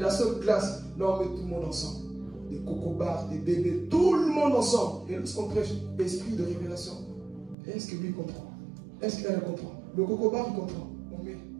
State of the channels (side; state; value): left; drops out; at 7.6 s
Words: seule classe. Là, on met tout le monde ensemble. Des cocobars, des bébés, tout le monde ensemble. Et lorsqu'on prêche l'esprit de révélation, est-ce que lui comprend? Est-ce qu'elle comprend? Le cocobar, il comprend. On met,